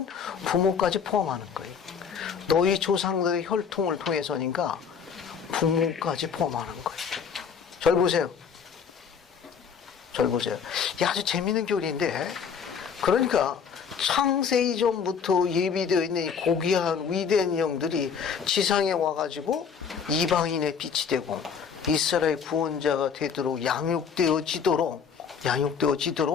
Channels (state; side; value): quieter; right; 6.7 dB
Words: 부모까지 포함하는 거예요. 너희 조상들의 혈통을 통해서니까 부모까지 포함하는 거예요. 절 보세요. 절 보세요. 이 아주 재밌는 교리인데, 그러니까 창세 이전부터 예비되어 있는 이 고귀한 위대한 영들이 지상에 와가지고 이방인의 빛이 되고 이스라엘 구원자가 되도록 양육되어지도록